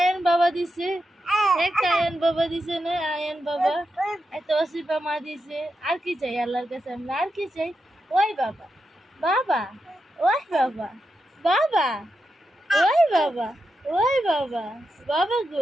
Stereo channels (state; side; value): normal; both; correlation 0.87